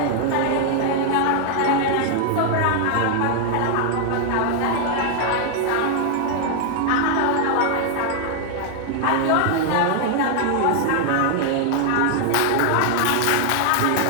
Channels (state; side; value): different; both; correlation 0.00